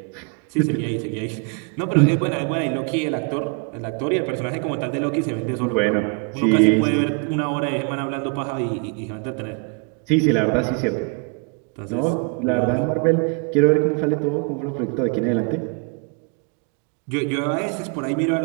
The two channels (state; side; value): quieter; left; 35.7 dB